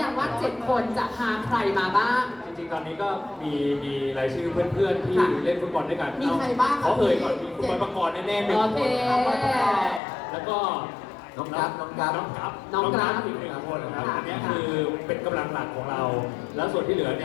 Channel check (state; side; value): drops out; right; at 10.0 s